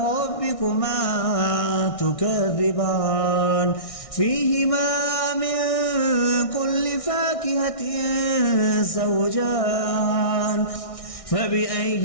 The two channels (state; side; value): late; right; 1.6 ms